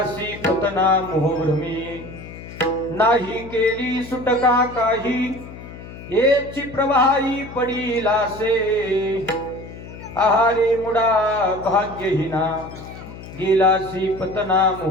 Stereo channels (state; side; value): noise; left; hum, 14 dB below the sound